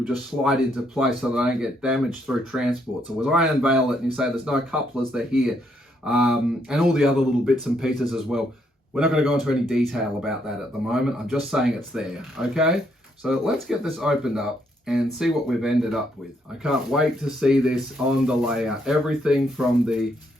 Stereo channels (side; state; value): both; normal; correlation 0.74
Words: just slide into place so they don't get damaged through transport. So as I unveil it and you say there's no couplers, they're here, and all the other little bits and pieces as well. We're not going to go into any detail about that at the moment. I'm just saying it's there, okay? So let's get this opened up and see what we've ended up with. I can't wait to see this on the layout. Everything from the